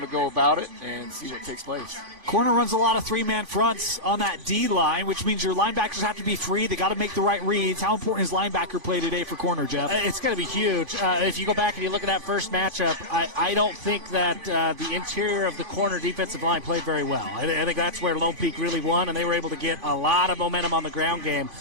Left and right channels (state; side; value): late; left; 3.5 ms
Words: to go about it and see what takes place. Corner runs a lot of three-man fronts on that D-line, which means your linebackers have to be free. They got to make the right reads. How important is linebacker play today for corner, Jeff? It's going to be huge. If you go back and you look at that first matchup, I don't think that the interior of the corner defensive line played very well. I think that's where Lone Peak really won, and they were able to get a lot of momentum on the ground game.